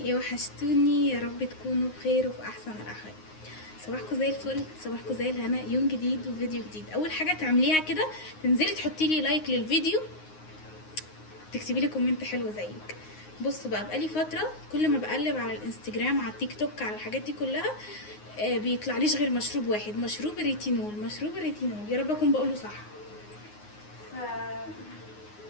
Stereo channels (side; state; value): right; late; 9.6 ms